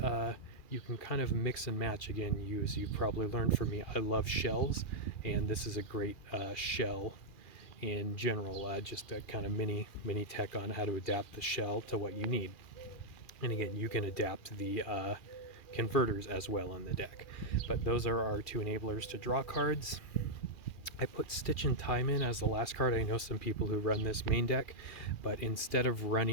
you can kind of mix and match. Again, use. You've probably learned from me, I love shells, and this is a great shell in general, just a kind of mini tech on how to adapt the shell to what you need. And again, you can adapt the converters as well in the deck. But those are our 2 enablers to draw cards. I put Stitch in Time in as the last card. I know some people who run this main deck, but instead of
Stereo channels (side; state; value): right; late; 2.4 ms